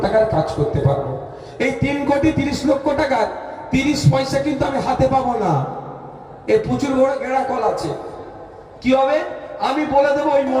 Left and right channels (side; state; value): both; identical; correlation 1.00